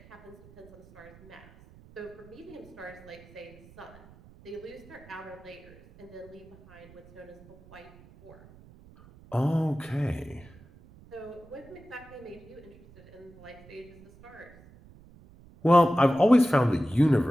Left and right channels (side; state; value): right; noise; rumble, 23 dB below the sound